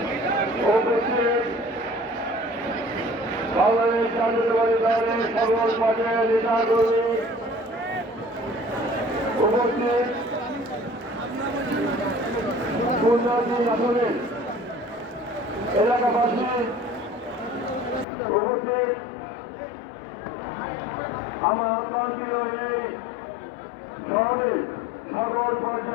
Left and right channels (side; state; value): right; drops out; at 18.1 s